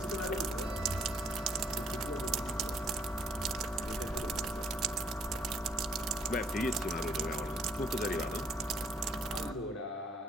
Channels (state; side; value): normal; both; correlation 0.66